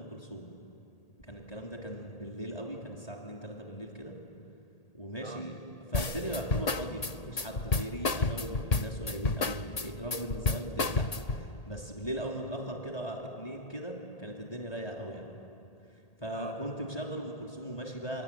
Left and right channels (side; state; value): right; late; 1.8 ms